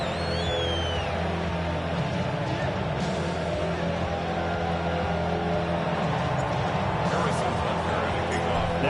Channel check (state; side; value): identical; both; correlation 1.00